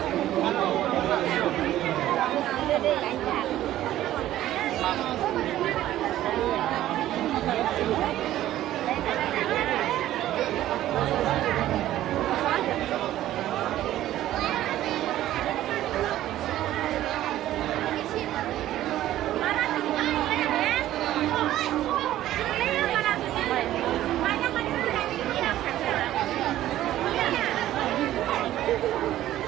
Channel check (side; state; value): left; quieter; 13.6 dB